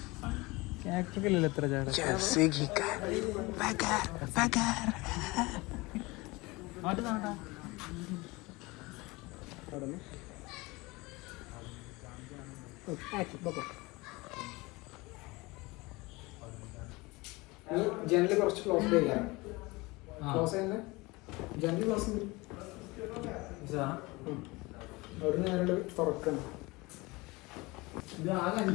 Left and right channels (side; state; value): right; quieter; 23.3 dB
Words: എത്ര ചാട ജനല് കുറച്ച് ക്ലോസ് ചെയ്യാം. ക്ലോസ് ചെയ്യുന്ന ജനല് ക്ലോസ് അവിടെ നേരെ തുറക്കണം.